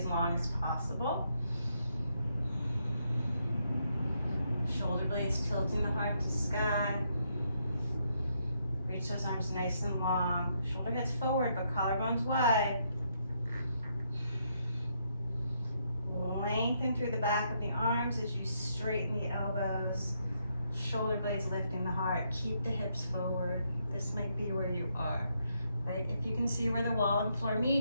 long as possible. Shoulder blades tilting the heart to sky. Reach those arms nice and long. Shoulder heads forward, but collarbones wide. Lengthen through the back of the arms as you straighten the elbows. Shoulder blades lifting the heart. Keep the hips forward. This might be where you are, right? If you can see where the wall and floor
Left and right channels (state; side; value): inverted; both; correlation -0.76